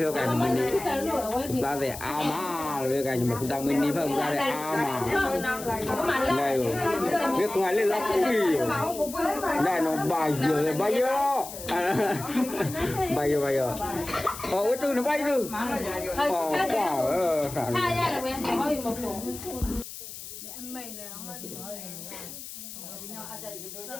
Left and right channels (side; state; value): left; noise; hiss, 11 dB below the sound